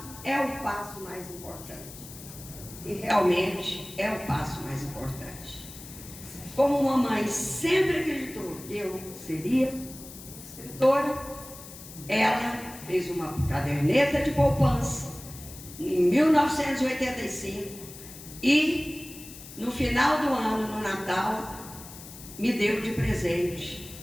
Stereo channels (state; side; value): noise; left; hiss, 15 dB below the sound